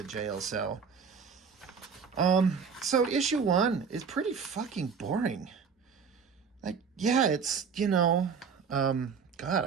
jail cell. So issue 1 is pretty fucking boring. Like, yeah, it's, God,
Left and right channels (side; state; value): left; quieter; 6.0 dB